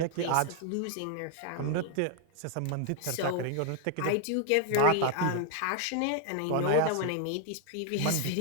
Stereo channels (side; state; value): both; different; correlation 0.00